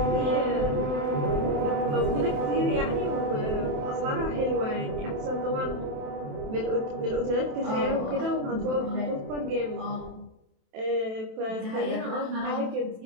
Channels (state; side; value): late; left; 27 ms